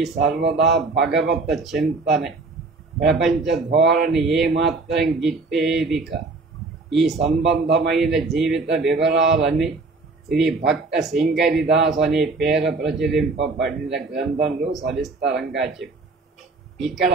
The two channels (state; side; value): quieter; left; 3.7 dB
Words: సర్వదా భగవత చింతనే. ప్రపంచ ధోరణి ఏమాత్రం గిట్టేదిక. ఈ సంబంధమైన జీవిత వివరాలన్నీ శ్రీ భక్త సింగరిదాస్ అనే పేర ప్రచురింపబడిన గ్రంథంలో సవిస్తరంగా చెప్పి ఇక్కడ